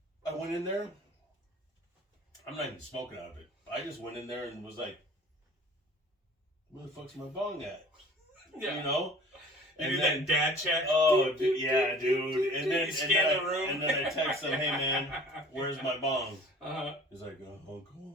I went in there. I'm not even smoking out of it. I just went in there and was like, where the fuck's my bong at? Yeah. You know? You do that dad check. Oh, yeah, dude. And then, You scan the room. and then I text him, hey, man, where's my bong? Uh-huh. He's like, Uncle,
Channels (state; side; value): normal; both; correlation 0.47